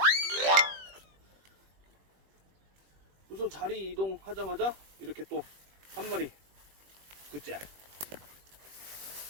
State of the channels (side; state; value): left; late; 21 ms